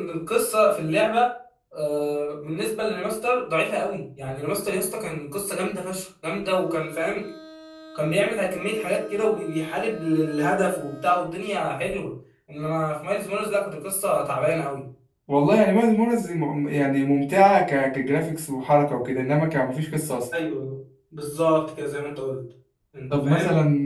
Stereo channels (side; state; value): both; identical; correlation 1.00